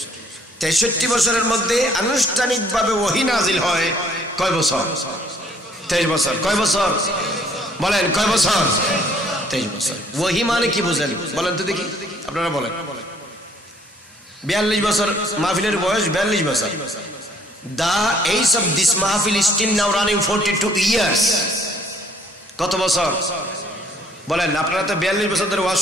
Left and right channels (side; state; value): both; normal; correlation 0.61